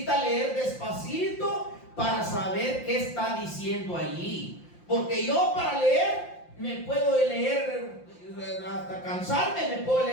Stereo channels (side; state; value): right; late; 5.8 ms